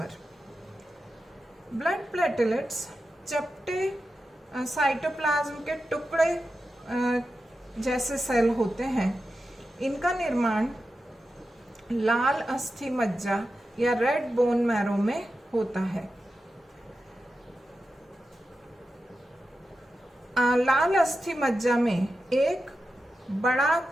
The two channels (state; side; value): normal; both; correlation 0.91